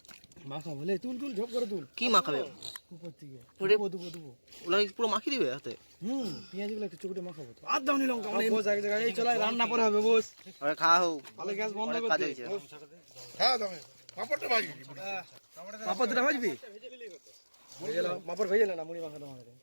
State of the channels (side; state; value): both; inverted; correlation -1.00